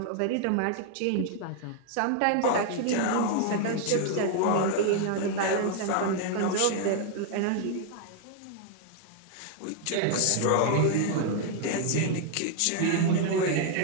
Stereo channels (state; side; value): different; both; correlation 0.00